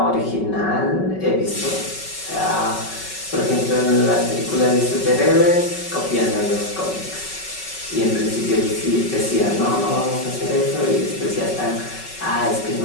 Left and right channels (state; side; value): late; right; 5.3 ms